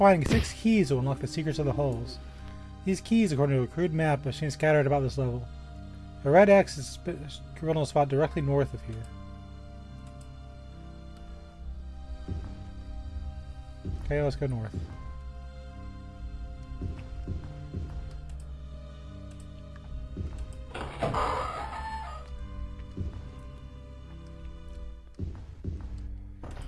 6 keys to unlock the secrets of the halls. These keys, according to a crude map, are seen scattered about this level. A red X is scribbled on a spot directly north of here. Okay, let's go north.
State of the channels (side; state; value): both; identical; correlation 1.00